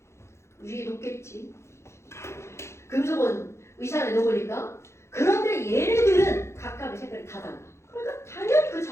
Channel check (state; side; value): late; right; 0.13 ms